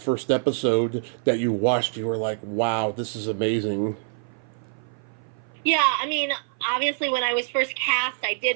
episode that you watched, you were like, "Wow, this is amazing." Yeah, I mean, obviously, when I was first cast, I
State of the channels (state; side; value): silent; left; 56 dB below the other